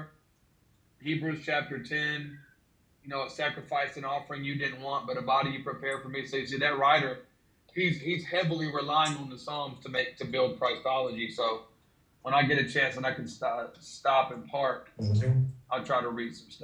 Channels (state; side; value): identical; both; correlation 1.00